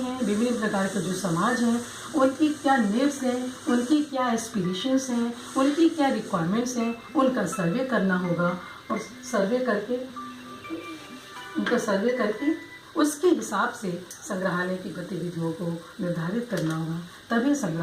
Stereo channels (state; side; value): identical; both; correlation 1.00